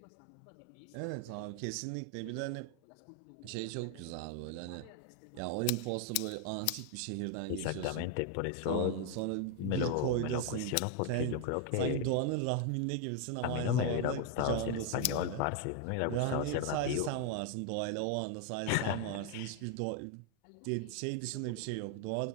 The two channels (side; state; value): both; different; correlation 0.00